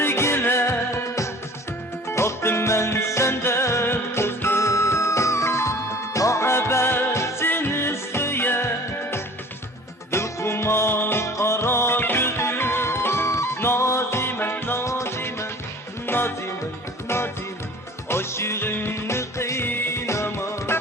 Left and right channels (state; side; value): normal; both; correlation 0.46